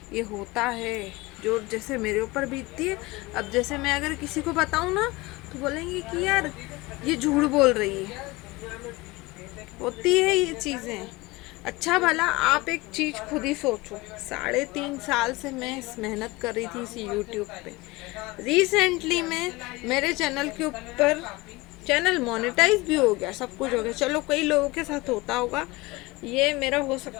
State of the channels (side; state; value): right; quieter; 22.0 dB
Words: ये होता है जो जैसे मेरे ऊपर बीतती है। अब जैसे मैं अगर किसी को बताऊँ ना तो बोलेंगे कि यार ये झूठ बोल रही है, होती है ये चीज़ें। अच्छा भला आप एक चीज़ खुद ही सोचो, 3.5 साल से मैं इस मेहनत कर रही थी इस यूट्यूब पे। रिसेंटली में मेरे चैनल के ऊपर चैनल मोनेटाइज भी हो गया, सब कुछ हो गया। चलो कई लोगों के साथ होता होगा, ये मेरा हो